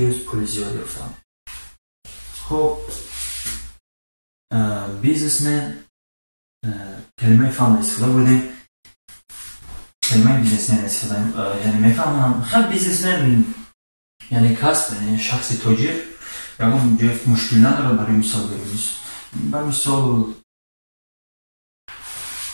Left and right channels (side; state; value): both; inverted; correlation -1.00